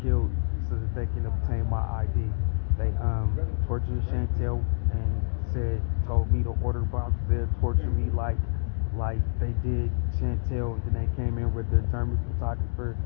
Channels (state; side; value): silent; right; digital silence